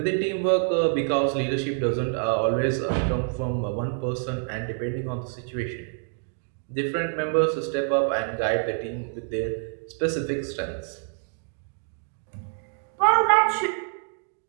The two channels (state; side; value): silent; left; 61 dB below the other